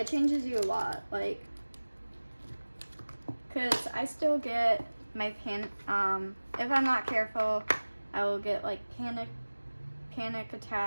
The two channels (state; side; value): inverted; both; correlation -1.00